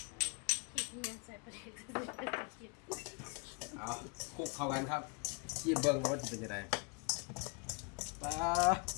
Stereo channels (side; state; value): right; quieter; 31.8 dB